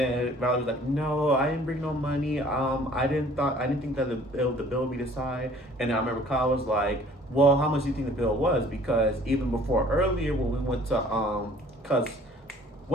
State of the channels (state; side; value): normal; both; correlation 0.54